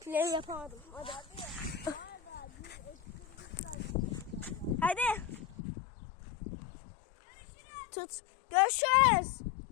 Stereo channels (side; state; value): right; drops out; at 5.6 s